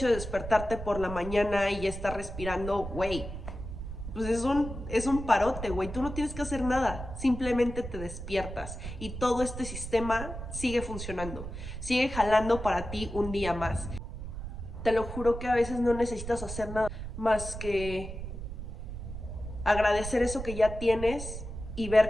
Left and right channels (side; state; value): right; noise; rumble, 8 dB below the sound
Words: de despertarte por la mañana y ya estar respirando, güey, pues es un parote, güey. Tú no tienes que hacer nada. Simplemente te despiertas y todo este sistema sigue funcionando. Sigue jalando para ti un día más. Te lo juro que a veces no necesitas hacer nada más que agradecer eso que ya tienes y